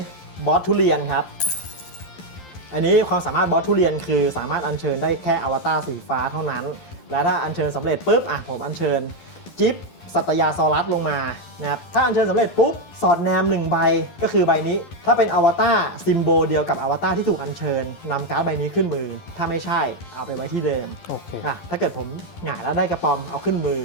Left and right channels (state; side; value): late; right; 11 ms